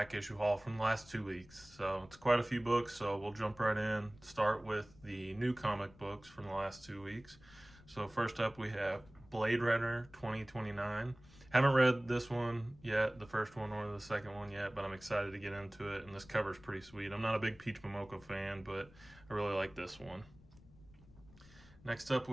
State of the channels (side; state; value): left; noise; rumble, 23 dB below the sound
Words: issue haul from the last 2 weeks. So it's quite a few books, so we'll jump right in. Start with the new comic books from the last 2 weeks. So first up we have Blade Runner 2029. Haven't read this one yet, the first one or the second one yet, but I'm excited to get into it, and this cover's pretty sweet. I'm not a big Peach Momoko fan, but I really like this one. Next up,